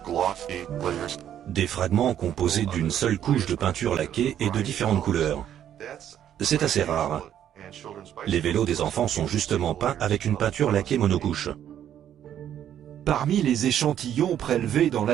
Des fragments composés d'une seule couche de peinture laquée et de différentes couleurs. C'est assez rare. Les vélos des enfants sont justement peints avec une peinture laquée monocouche. Parmi les échantillons prélevés dans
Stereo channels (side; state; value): left; quieter; 10.4 dB